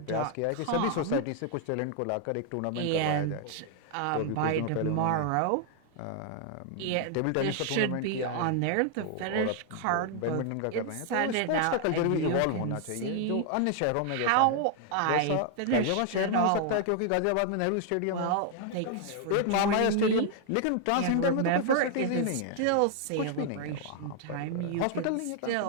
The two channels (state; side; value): different; both; correlation 0.00